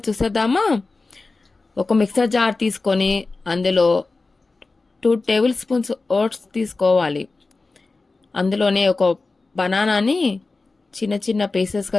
చూసేద్దామా? ఒక మిక్సర్ జార్ తీసుకొని అందులో 2 టేబుల్ స్పూన్స్ ఓట్స్ తీసుకోవాలి. అందులోనే ఒక బనానాని చిన్న చిన్న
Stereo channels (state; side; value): quieter; right; 3.6 dB